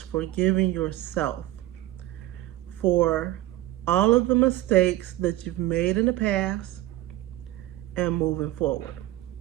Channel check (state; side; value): quieter; left; 15.8 dB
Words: forgiving yourself for all of the mistakes that you've made in the past and moving forward.